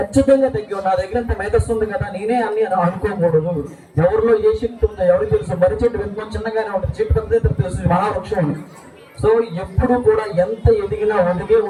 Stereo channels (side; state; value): both; identical; correlation 1.00